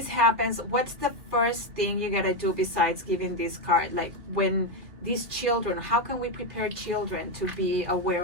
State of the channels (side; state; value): left; late; 2.6 ms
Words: happens, what's the first thing you gotta do besides giving this card? Like when these children, how can we prepare children to be aware